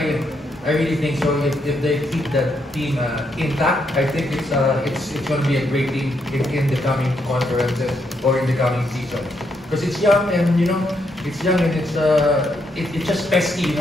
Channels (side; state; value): both; normal; correlation 0.78